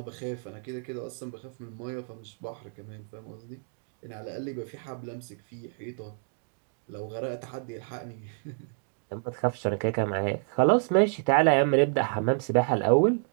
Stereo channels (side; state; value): left; silent; 58 dB below the other